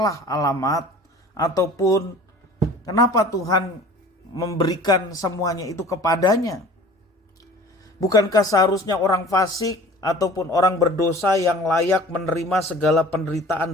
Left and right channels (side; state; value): both; normal; correlation 0.45